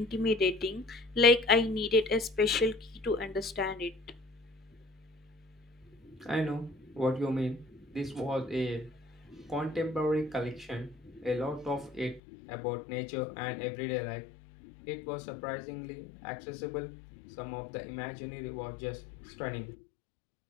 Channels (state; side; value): drops out; right; at 12.2 s